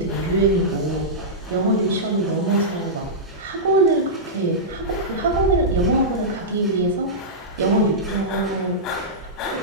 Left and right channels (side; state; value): both; normal; correlation -0.13